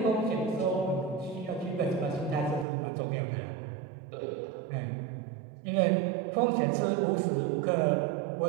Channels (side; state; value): left; drops out; at 2.7 s